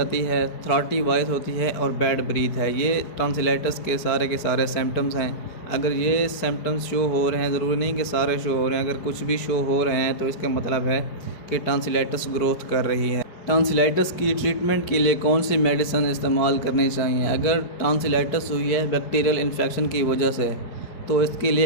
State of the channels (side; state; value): right; late; 4.9 ms